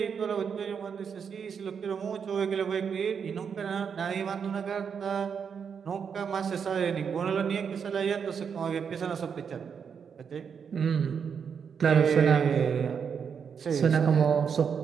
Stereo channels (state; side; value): quieter; left; 6.8 dB